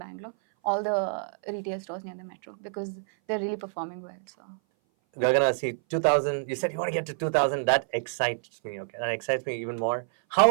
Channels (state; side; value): silent; left; 58 dB below the other